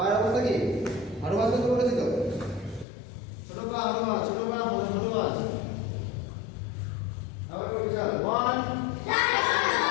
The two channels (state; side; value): drops out; right; at 2.9 s